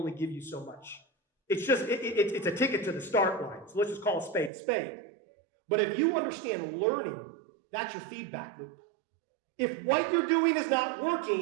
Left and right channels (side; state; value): left; drops out; at 4.5 s